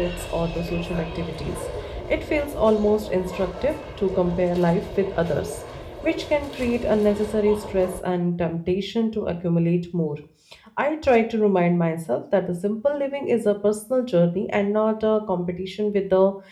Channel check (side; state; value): both; identical; correlation 1.00